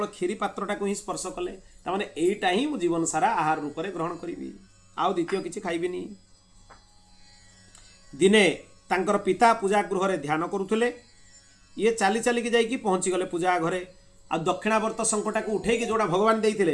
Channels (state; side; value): identical; both; correlation 1.00